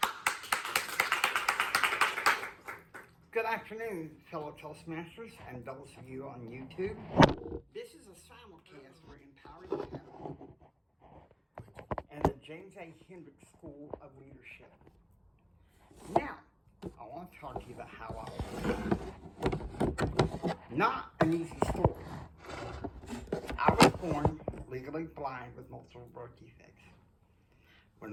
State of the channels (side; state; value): both; identical; correlation 1.00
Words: Good afternoon, fellow Toastmasters and those of you on YouTube. This is a simulcast for Empowering Channel and the James A. Hendricks School of Leadership. Now, I want to talk to you about how not an easy story. I was born legally blind with multiple birth defects. When